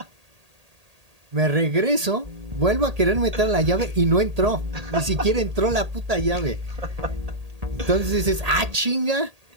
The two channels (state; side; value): late; left; 1.8 ms